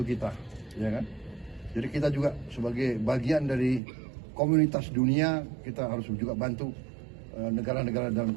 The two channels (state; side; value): drops out; left; at 3.8 s